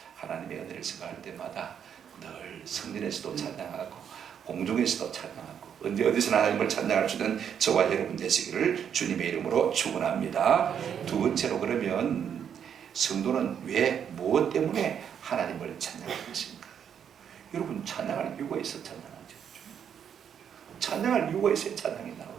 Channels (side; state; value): left; quieter; 8.3 dB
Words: 하나님의 은혜를 생각할 때마다 늘 성전에서도 찬양하고 공중에서도 찬양하고 언제 어디서나 하나님을 찬양할 수 있는 저와 여러분 되시기를 주님의 이름으로 축원합니다. 두 번째로 그러면 성도는 왜 무엇 때문에 하나님을 찬양할 것인가? 여러분 찬양할 이유가 있어 찬양하죠. 찬양할 이유가 있어야 찬양이